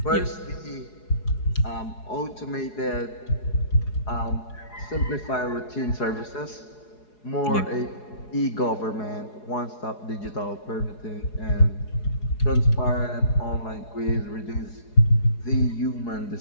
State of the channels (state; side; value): late; right; 4.8 ms